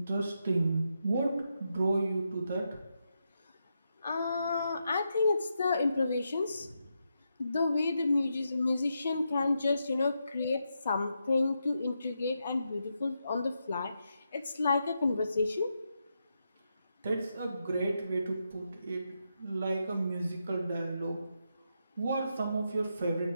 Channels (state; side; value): inverted; both; correlation -0.84